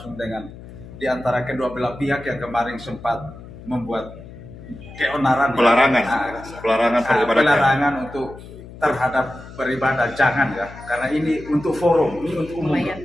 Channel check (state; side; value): noise; left; hum, 16 dB below the sound